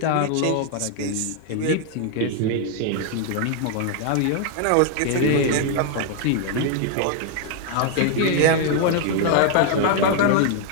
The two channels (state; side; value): different; both; correlation 0.00